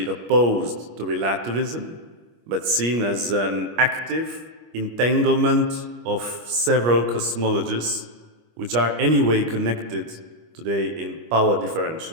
opposed to relativism, but seen as an active entanglement of several cosmologies, which are anyway connected today in power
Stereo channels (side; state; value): left; late; 25 ms